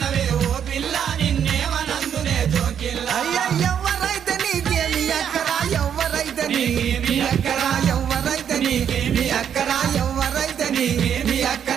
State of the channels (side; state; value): left; quieter; 8.6 dB